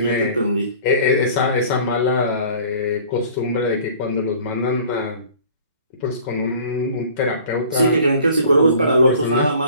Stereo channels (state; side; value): inverted; both; correlation -0.48